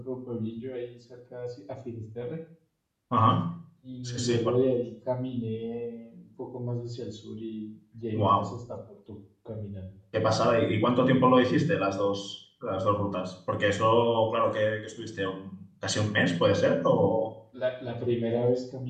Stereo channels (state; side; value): identical; both; correlation 1.00